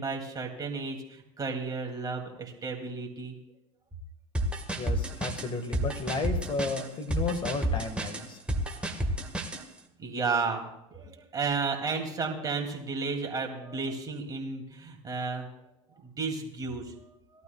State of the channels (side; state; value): both; normal; correlation 0.36